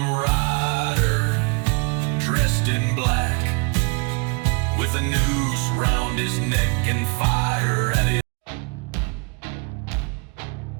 rider, dressed in black, with a noose round his neck and fire at his.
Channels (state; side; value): quieter; left; 31.6 dB